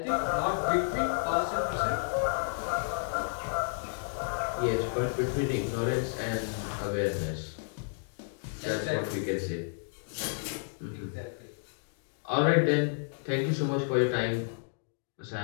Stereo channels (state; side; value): silent; right; digital silence